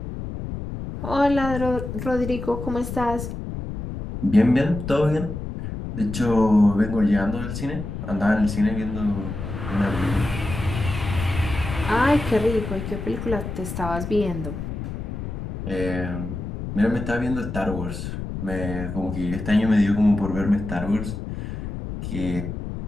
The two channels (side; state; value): left; noise; rumble, 7 dB below the sound